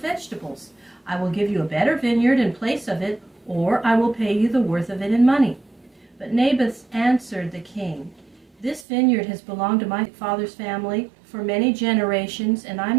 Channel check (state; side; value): drops out; left; at 8.8 s